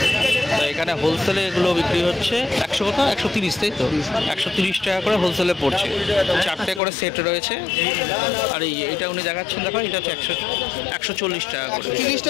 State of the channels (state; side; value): drops out; right; at 6.8 s